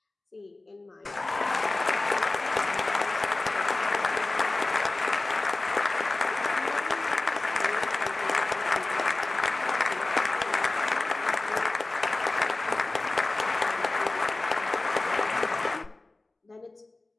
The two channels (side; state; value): right; quieter; 3.0 dB